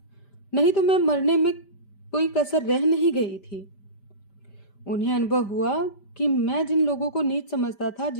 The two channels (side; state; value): right; late; 5.1 ms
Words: नहीं तो मैं मरने में कोई कसर रह नहीं गई थी। उन्हें अनुभव हुआ कि मैं जिन लोगों को नीच समझता था